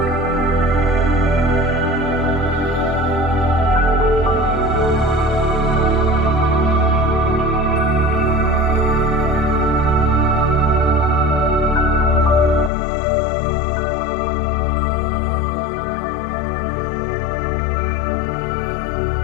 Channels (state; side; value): drops out; right; at 12.7 s